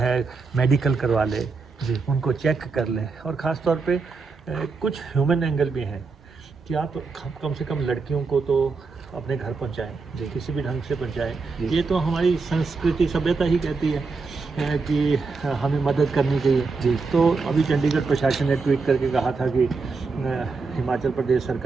मेडिकल करवा ले, जी उनको चेक कर ले। और ख़ास तौर पे कुछ ह्यूमन एंगल भी हैं कि आप कम से कम लड़कियों को तो अपने घर पहुंचाएं, किसी भी ढंग से पहुंचाएं। ये तो हमारी संस्कृति, सभ्यता ही कहती है कि हमें मदद करनी चाहिए। जी तो अभी चंडीगढ़ प्रशासन ने ट्वीट करके कहा था कि हिमाचल प्रदेश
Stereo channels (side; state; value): left; quieter; 4.4 dB